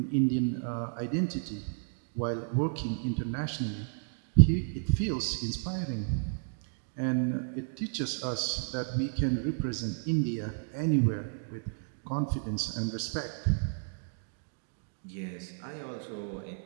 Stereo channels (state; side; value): silent; left; digital silence